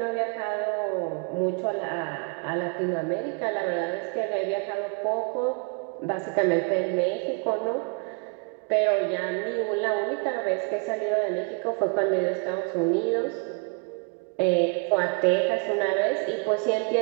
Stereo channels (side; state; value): left; quieter; 35.0 dB